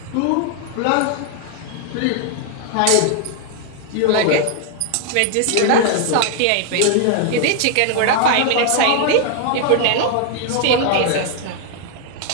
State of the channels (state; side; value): different; both; correlation 0.00